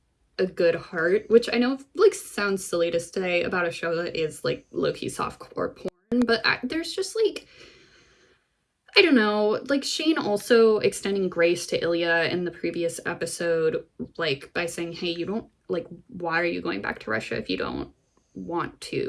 a good heart, which I know like sounds silly to say about a show that is like low-key softcore porn, but there's just like, I don't know, like Shane also extending grace to Ilya in the previous episode, like by saying, hey, you don't, like, why are you going back to Russia if you don't want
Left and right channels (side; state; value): both; identical; correlation 1.00